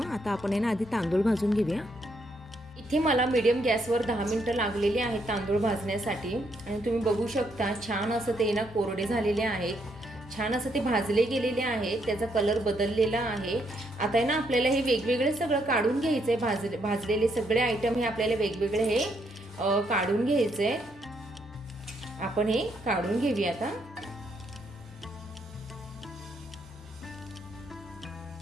आता आपण आहे ना आधी तांदूळ भाजून घेऊया. इथे मला मीडियम गॅसवर 10 मिनटं लागलेली आहेत तांदूळ भाजण्यासाठी आणि तुम्ही बघू शकता छान असं ते ना कोरडे झालेले आहेत, छान असं ते भाजले गेलेले आहेत, त्याचा कलर बदललेला आहे. आता आहे ना आपल्याला हे वेगवेगळे सगळं काढून घ्यायचं आहे. भाजलेले सगळे आयटम हे आपल्याला वेगवेगळे हे काढून घ्यायचे आहे. आपण हे काढून घेऊया आता.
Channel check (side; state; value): both; normal; correlation 0.75